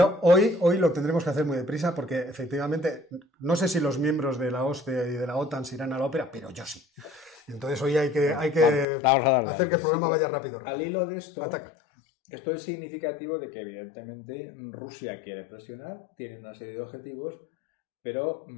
hoy lo tendremos que hacer muy deprisa porque efectivamente no sé si los miembros de la OSCE y de la OTAN se irán a la ópera, pero yo sí. Entonces hoy hay que hacer que el programa vaya rápido. Al hilo de esto, Ataca. Esto es significativo de que evidentemente Rusia quiere presionar, tiene una serie de objetivos, pero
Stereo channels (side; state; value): right; drops out; at 8.8 s